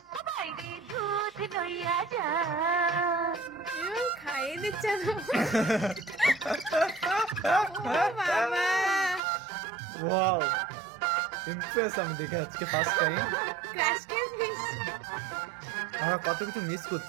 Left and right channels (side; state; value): left; drops out; at 9.2 s